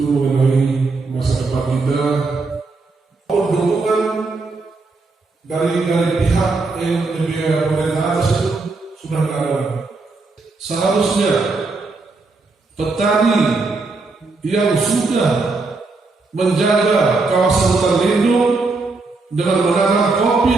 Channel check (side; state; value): left; quieter; 3.8 dB